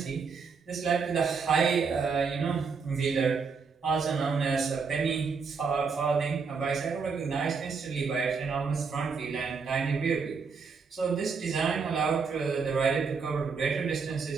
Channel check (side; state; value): left; quieter; 5.3 dB